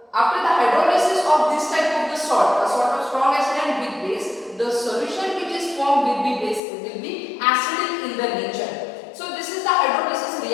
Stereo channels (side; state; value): right; drops out; at 6.6 s